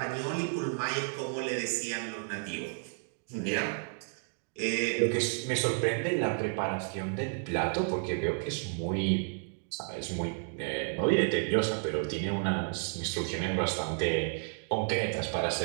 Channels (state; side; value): silent; left; 57 dB below the other